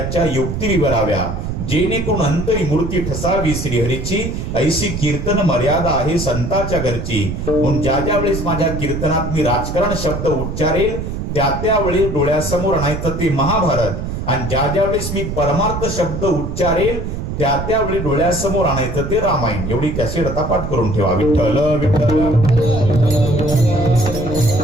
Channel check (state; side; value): noise; right; rumble, 5 dB below the sound